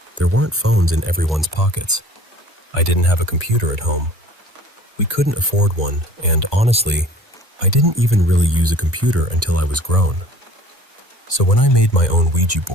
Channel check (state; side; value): normal; both; correlation 0.48